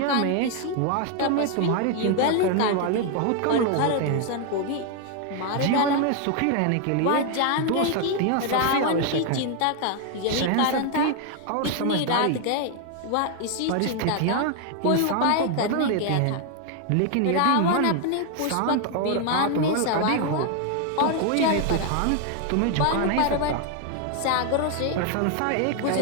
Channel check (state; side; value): different; both; correlation 0.00